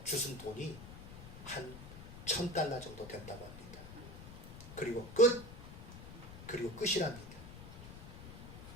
주순 돈이 한 1,000달러 정도 된다고 합니다. 그리고 끝이랍니다.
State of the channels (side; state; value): left; noise; rumble, 12 dB below the sound